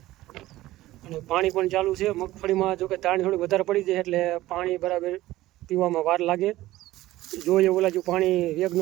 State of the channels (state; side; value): quieter; left; 16.4 dB